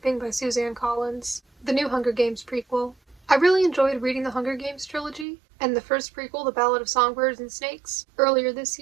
by Suzanne Collins, the new Hunger Games prequel. I really enjoyed reading the Hunger Games trilogy, and the first prequel, The Ballad of Songbirds and Snakes, earlier this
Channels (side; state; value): left; drops out; at 5.2 s